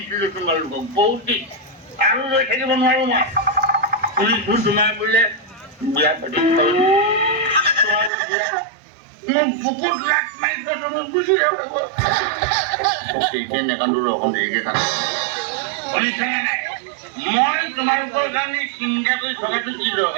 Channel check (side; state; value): left; drops out; at 8.1 s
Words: তোমালোকক বহুত দিন আৰু ৰৈ থাকিব নোৱাৰো মই শুনিছোঁ তোমাৰ বোলে বিয়া পাতি মোক বুকুত লাট মাৰিছে তুমি গুচি যাব নেকান্দো ৰকম দেৰিকে থাক শুনিছানে নাই মই তোমালোকৰ কাৰণে চিন্তা কৰি থকাটো কি